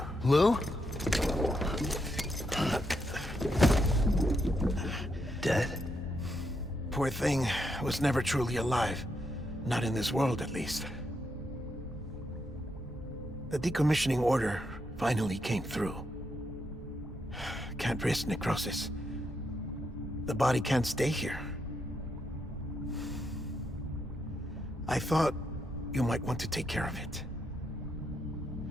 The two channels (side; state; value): both; normal; correlation 0.80